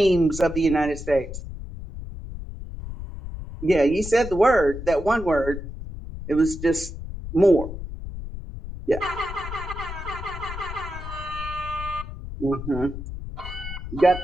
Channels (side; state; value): left; noise; rumble, 9 dB below the sound